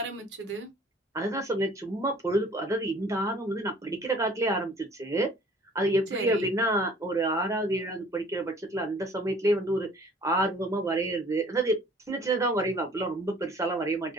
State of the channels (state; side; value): normal; both; correlation 0.53